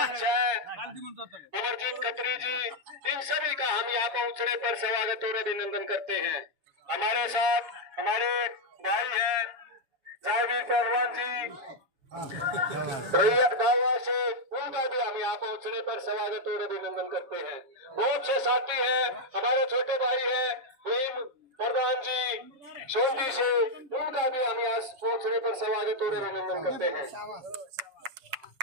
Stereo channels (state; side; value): late; left; 7.1 ms